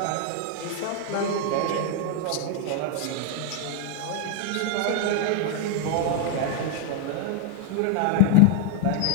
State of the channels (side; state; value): both; different; correlation 0.00